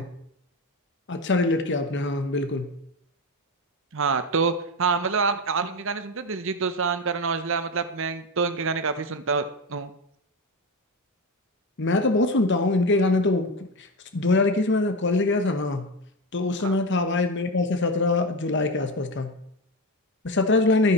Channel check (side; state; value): both; normal; correlation 0.18